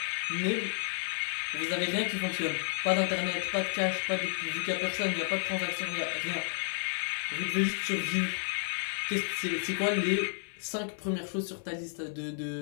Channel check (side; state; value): right; silent; digital silence